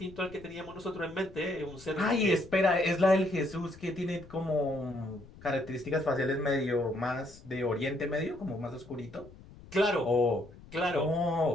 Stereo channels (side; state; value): left; noise; rumble, 20 dB below the sound